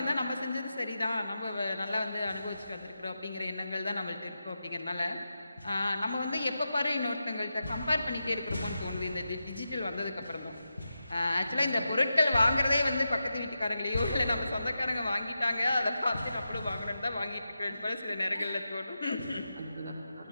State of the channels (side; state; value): both; inverted; correlation -0.90